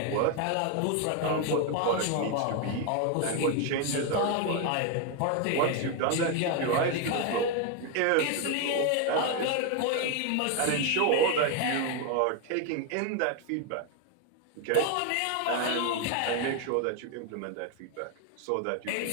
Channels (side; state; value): both; different; correlation 0.01